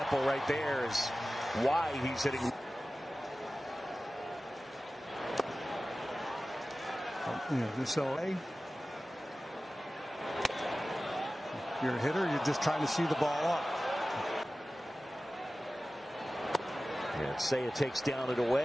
right there is why he's hitting. So you're a hitter, you're just trying to see the ball up. And Seiya takes down and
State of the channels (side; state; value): both; normal; correlation 0.96